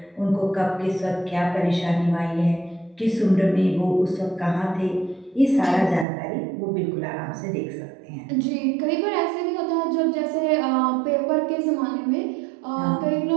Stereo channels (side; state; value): left; drops out; at 6.1 s